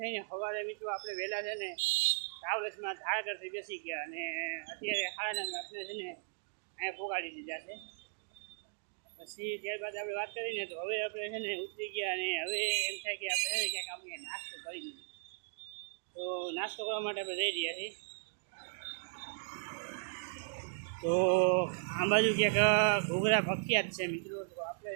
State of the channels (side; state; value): left; silent; digital silence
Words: સવારે મિત્રો આપણે વહેલા છે ને ટ્રાવેલ્સમાં ધારાગરથી બેસી ગયા, અને અત્યારે 9:30 આપણે છે ને અહીંયા પોગાડી દીધા છે. પછી ત્યારબાદ આપણે વાત કરીને તો હવે આપણે છે ને ઉતરી ગયા, અને હવે એમ થાય કે આપણે છે ને ક્યાંક આપણે નાસ્તો કરી દઈએ. તો નાસ્તો કરવા માટે આપણે જઈ રહ્યા છીએ. તો આ બાજુ ક્યાંક ઘૂઘરા પ્રખ્યાત છે મિત્રો. તો આપણે